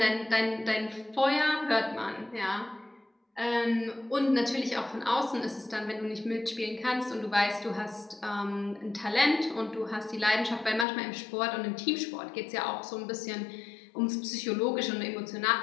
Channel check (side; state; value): right; drops out; at 10.9 s